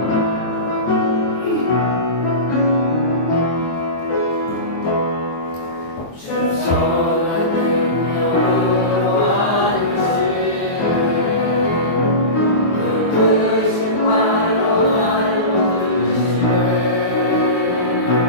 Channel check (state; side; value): late; right; 23 ms